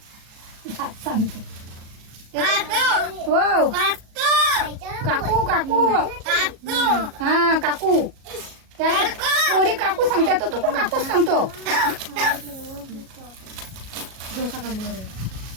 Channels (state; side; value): late; left; 37 ms